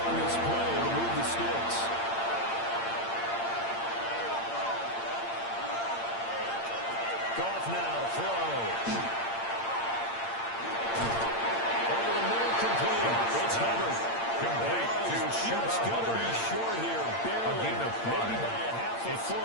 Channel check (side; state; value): right; late; 8.7 ms